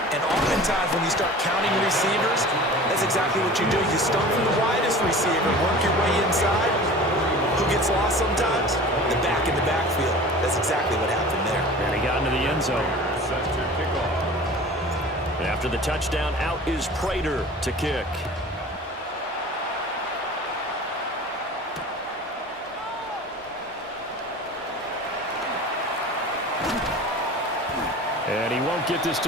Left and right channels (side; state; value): both; normal; correlation 0.39